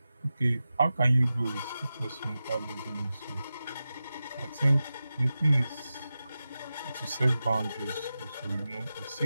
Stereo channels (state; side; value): inverted; both; correlation -0.93